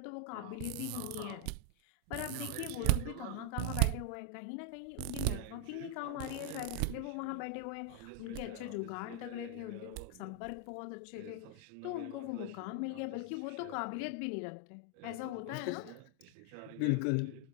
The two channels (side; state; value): both; different; correlation 0.00